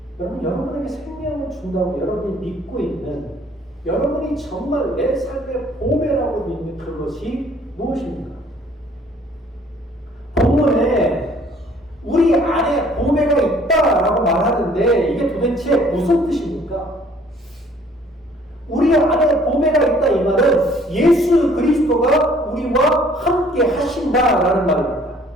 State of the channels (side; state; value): both; normal; correlation 0.58